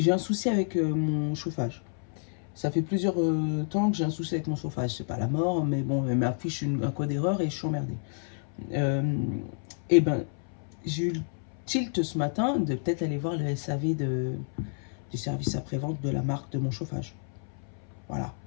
un souci avec mon chauffage. Ça fait plusieurs temps que j'ai un souci avec mon chauffage. C'est pas la mort, mais bon, elle m'affiche un code d'erreur et je suis emmerdée. Et ben, j'ai eu le tilt ce matin de peut-être aller voir le SAV du service après-vente de la marque de mon chauffage. Voilà.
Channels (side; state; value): right; silent; 58 dB below the other